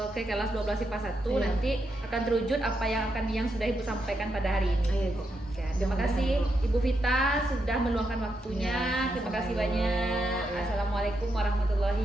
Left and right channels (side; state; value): both; normal; correlation 0.83